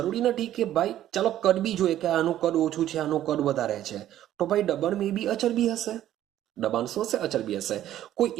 નથી કે ભાઈ ચાલો કદ બી જોઈએ કે આનું કદ ઓછું છે, આનું કદ વધારે છે, તો ભાઈ દબાણ મે બી અચળ બી હશે. દબાણ શું હશે? અચળ બી હશે. કોઈ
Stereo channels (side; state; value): left; quieter; 12.4 dB